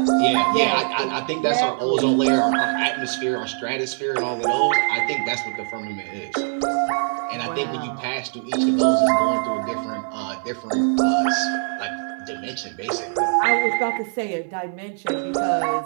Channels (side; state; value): left; silent; 63 dB below the other